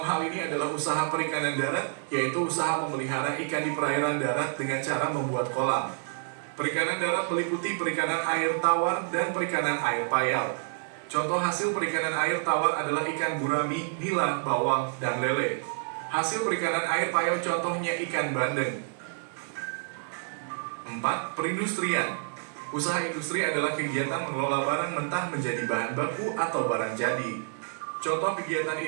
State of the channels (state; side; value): silent; left; 59 dB below the other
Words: hal ini adalah usaha perikanan darat, yaitu usaha memelihara ikan di perairan darat dengan cara membuat kolam. Perikanan darat meliputi perikanan air tawar dan perikanan air payau. Contoh hasil perikanan air tawar adalah ikan gurami, nila, bawal, dan lele. Hasil perikanan air payau contohnya ikan bandeng. 4. Perindustrian. Usaha industri adalah kegiatan mengelola barang mentah menjadi bahan baku atau barang jadi. Contoh kegiatan